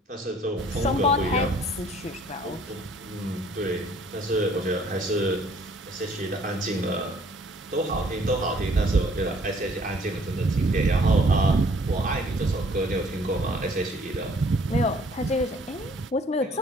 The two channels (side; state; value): both; normal; correlation 0.59